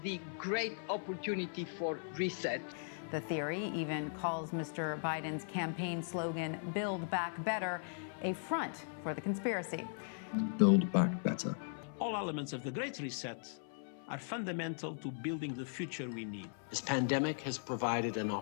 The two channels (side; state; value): right; silent; 52 dB below the other